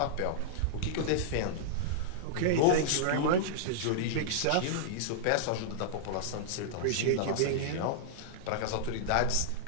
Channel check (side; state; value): both; different; correlation -0.02